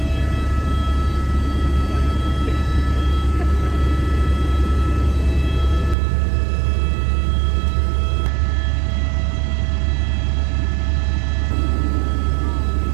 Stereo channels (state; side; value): drops out; left; at 6.0 s